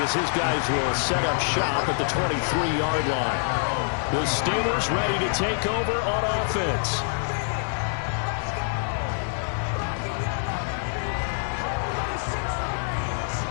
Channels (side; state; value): right; silent; digital silence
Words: as his guys will set up shop at the 23-yard line. The Steelers ready to take over on offense.